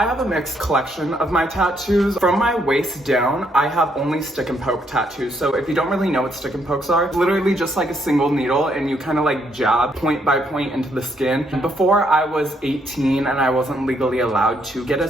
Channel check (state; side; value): normal; both; correlation 0.73